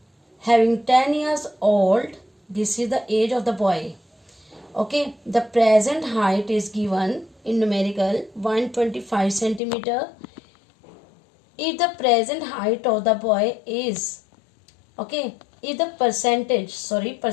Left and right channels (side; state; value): right; drops out; at 9.6 s